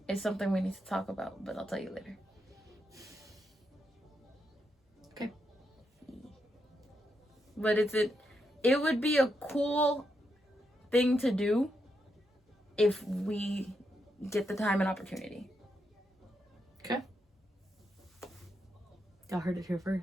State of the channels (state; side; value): normal; both; correlation 0.82